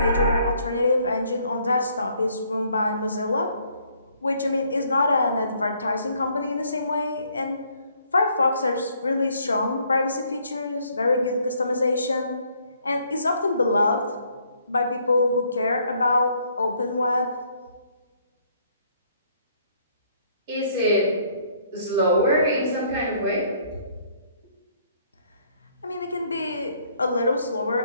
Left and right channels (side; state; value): both; inverted; correlation -0.66